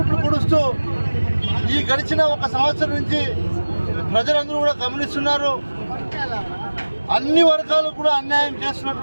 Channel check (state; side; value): inverted; both; correlation -1.00